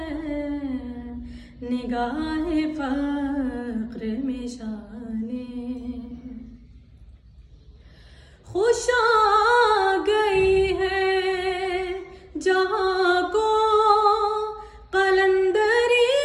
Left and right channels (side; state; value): both; identical; correlation 1.00